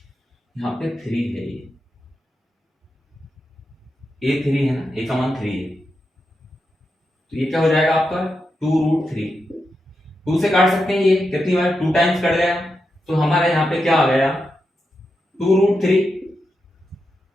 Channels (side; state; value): both; normal; correlation 0.87